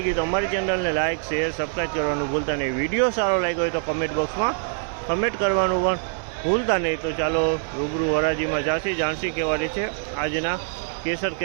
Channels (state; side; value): silent; left; 62 dB below the other